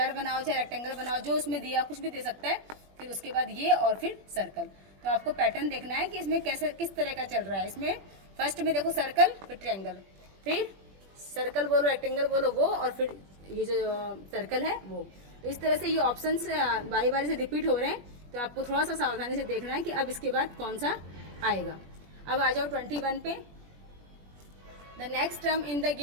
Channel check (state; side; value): late; left; 21 ms